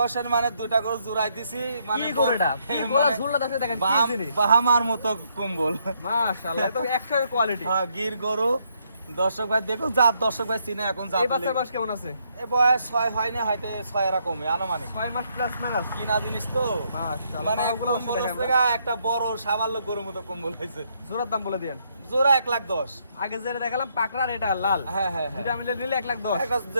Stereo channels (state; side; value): inverted; both; correlation -0.73